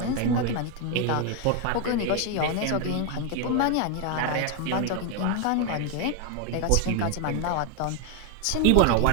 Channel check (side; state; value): both; different; correlation 0.01